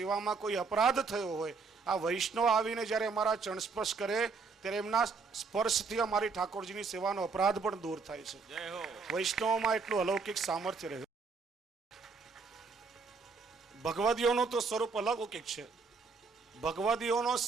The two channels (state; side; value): quieter; left; 4.8 dB